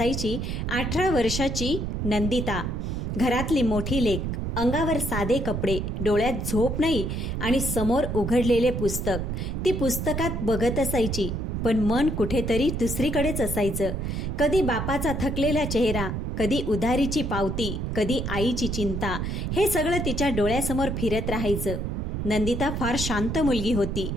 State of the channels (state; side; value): noise; right; rumble, 2 dB below the sound